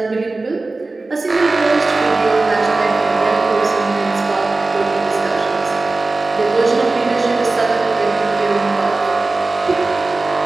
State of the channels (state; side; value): quieter; left; 3.4 dB